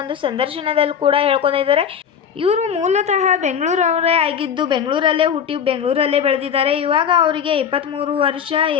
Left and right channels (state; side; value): quieter; right; 7.9 dB